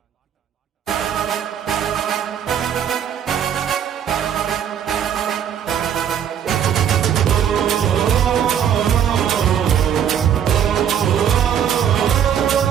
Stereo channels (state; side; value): quieter; left; 9.0 dB